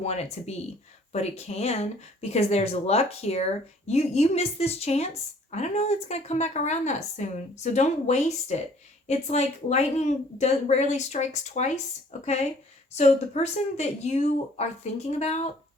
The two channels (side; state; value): both; normal; correlation 0.57